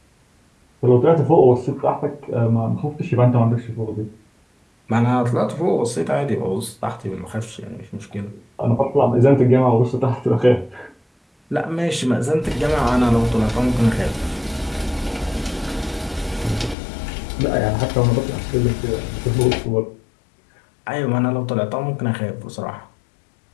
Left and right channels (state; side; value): drops out; right; at 16.8 s